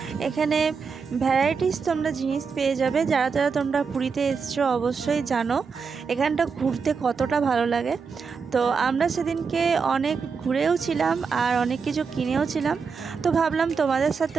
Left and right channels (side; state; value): left; quieter; 5.5 dB